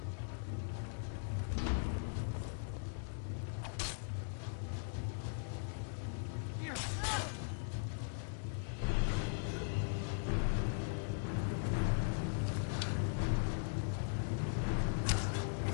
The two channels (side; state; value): right; silent; digital silence